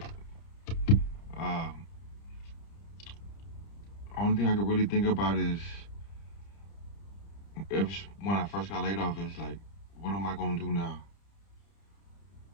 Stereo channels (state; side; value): late; right; 30 ms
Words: Uh, Only thing I could really think about is when I first got laid off is like, what am I gonna do now?